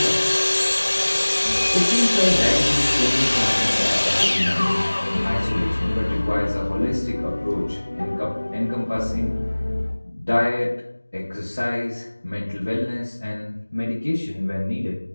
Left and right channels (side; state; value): both; inverted; correlation -1.00